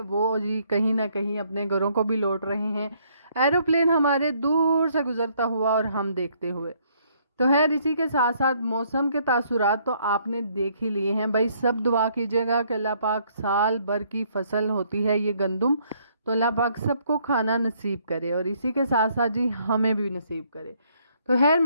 वो जी कहीं ना कहीं अपने घरों को भी लौट रहे हैं, एरोप्लेन हमारे दूर से गुजरता हुआ और हम देखते हुए। तो खैर इसी के साथ साथ मौसम के तासुरात तो आपने देख ही लिए हैं भाई। सब दुआ कीजिएगा कि अल्लाह पाक साल भर की फसल होती है ये गंदम, तो अल्लाह पाक सबको खाना नसीब करे और इसी के साथ साथ जी हमें भी नसीब करे। तो खैर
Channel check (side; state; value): both; inverted; correlation -0.67